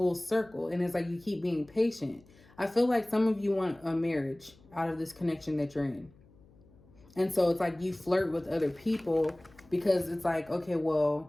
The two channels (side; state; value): left; noise; hum, 27 dB below the sound